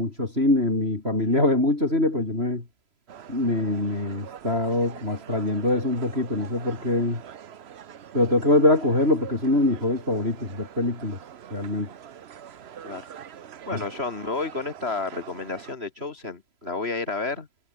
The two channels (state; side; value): late; left; 3.0 ms